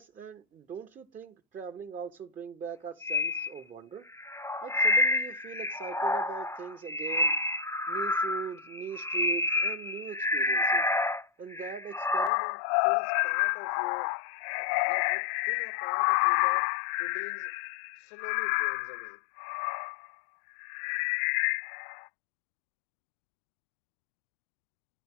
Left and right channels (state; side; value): drops out; right; at 12.3 s